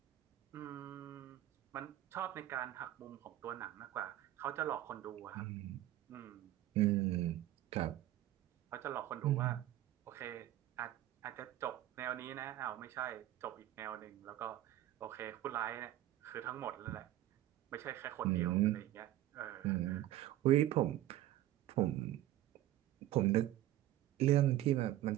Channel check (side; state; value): left; quieter; 14.1 dB